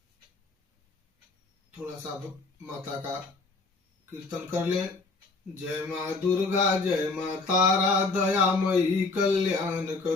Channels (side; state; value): right; quieter; 3.7 dB